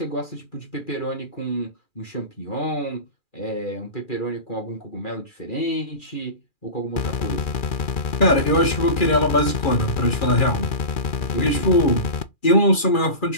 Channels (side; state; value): right; late; 2.4 ms